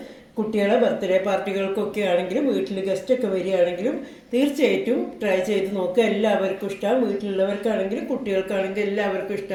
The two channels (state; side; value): identical; both; correlation 1.00